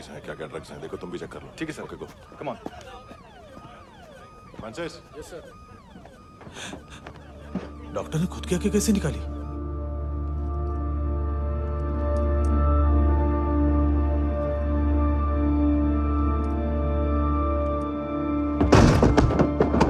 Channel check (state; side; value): identical; both; correlation 1.00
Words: हैं, क्या क्या ड्रग्स हैं, देखो तुम भी चेक कर लो। ठीक है sir. Okay go. Come on. Francis. Yes sir. Doctor ने खुद की आंखें कैसे निकाली?